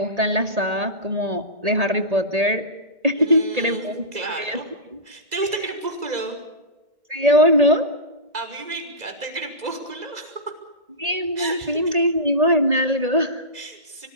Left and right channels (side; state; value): left; late; 2.0 ms